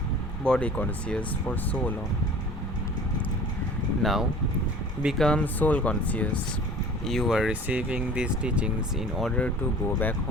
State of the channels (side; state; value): both; normal; correlation 0.45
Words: body conscious for so long. Now, become soul conscious. You are receiving these teachings in order to go back